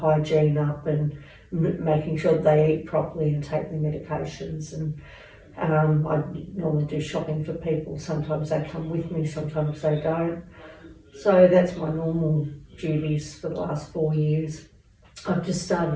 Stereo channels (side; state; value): both; identical; correlation 1.00